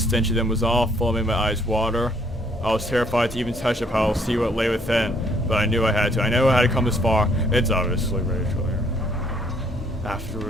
of them was awful, made my eyes water. I was terrified to even touch the pile, see what lay within, but I knew I had to. I knew I had to come this far. It's obviously Rachel here.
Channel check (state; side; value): normal; both; correlation 0.65